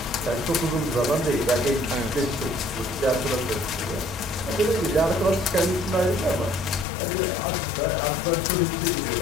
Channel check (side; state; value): right; drops out; at 6.9 s